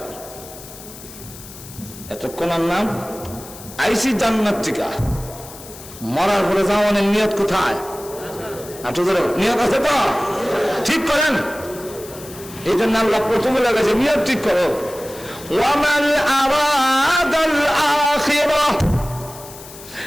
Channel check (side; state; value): left; noise; hiss, 16 dB below the sound